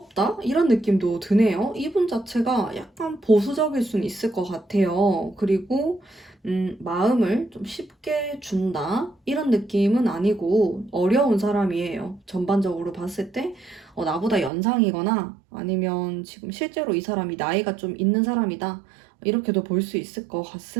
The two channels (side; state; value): left; drops out; at 14.5 s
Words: 이런 느낌도 드네요. 이분 자체가 약간 보수적일 수는 있을 것 같아요. 그리고 마음을 좀 쉽게 준다? 이런 느낌은 아니고 어려운 사람이에요. 전반적으로 봤을 때 나보다 연상이거나 아니면 지금 실제로 이 사람이 나이가 좀 있는 사람이다. 이렇게도 볼 수 있을 것